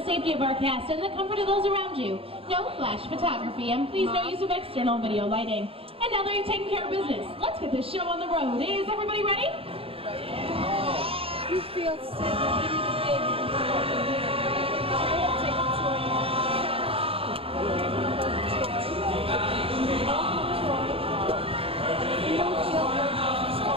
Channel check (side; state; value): left; late; 0.27 ms